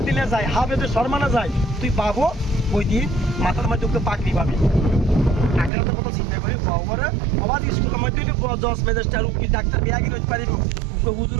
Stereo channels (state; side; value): drops out; left; at 5.7 s